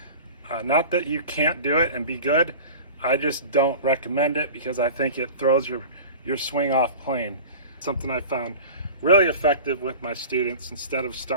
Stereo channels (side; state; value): both; inverted; correlation -0.37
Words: Not that you can't do it and be good, I just don't recommend it because I think it throws your swing off plane. Something I found really effective with my students. Instead of